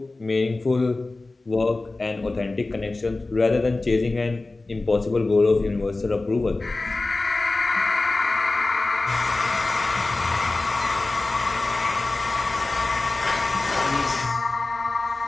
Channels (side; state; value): right; quieter; 3.2 dB